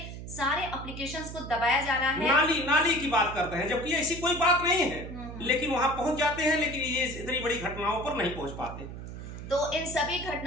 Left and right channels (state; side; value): noise; right; hum, 10 dB below the sound